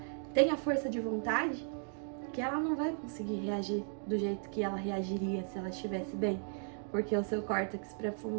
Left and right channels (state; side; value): silent; left; 54 dB below the other